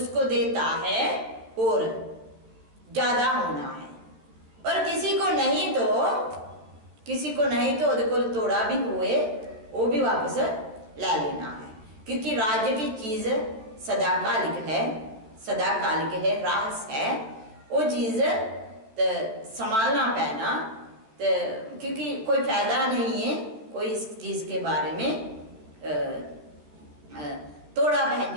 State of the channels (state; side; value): late; left; 14 ms